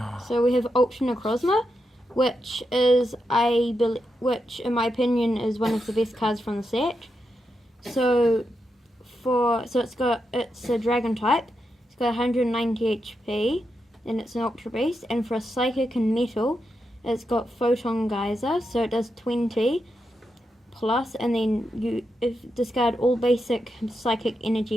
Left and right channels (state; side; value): normal; both; correlation 0.85